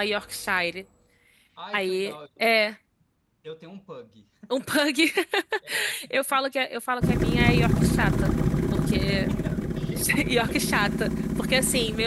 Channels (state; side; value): identical; both; correlation 1.00